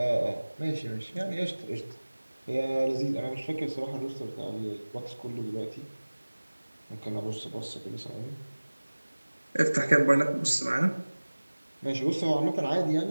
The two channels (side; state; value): both; inverted; correlation -1.00